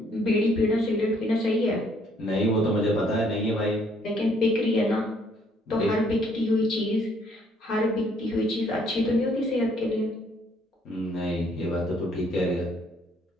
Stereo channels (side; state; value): both; normal; correlation 0.65